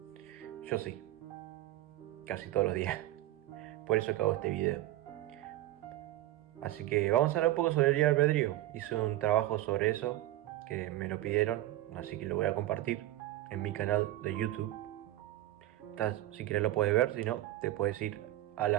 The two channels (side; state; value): left; quieter; 15.2 dB